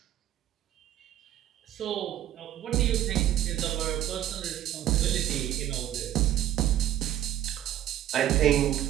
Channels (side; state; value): left; quieter; 12.3 dB